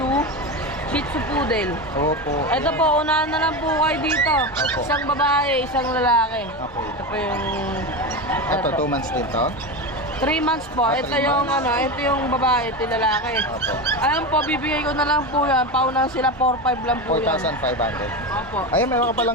Shih Tzu Poodle. Opo. Ito po, unahan na lang po kayo dito. Opo. Isang babae, isang lalaki. Okay. Ito po yung... Ito, 2 months din to. 3 months po. Ah, Ito 3 yung months. ito yung babae, ito yung lalaki. Opo. Alam po, bibigay ko na lang po yan. Paunahan sila 4.5 lang po yan. 4,500. Opo. Ayun, meron ka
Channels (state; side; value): normal; both; correlation 0.20